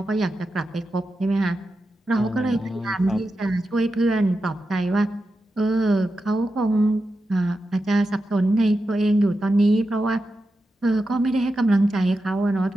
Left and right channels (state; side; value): normal; both; correlation 0.90